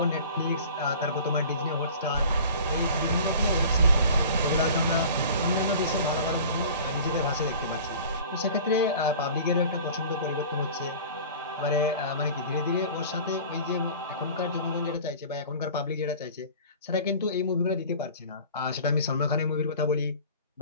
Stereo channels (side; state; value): both; inverted; correlation -0.42